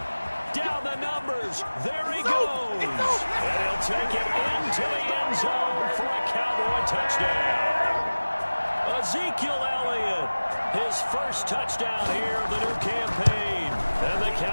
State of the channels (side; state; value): both; inverted; correlation -1.00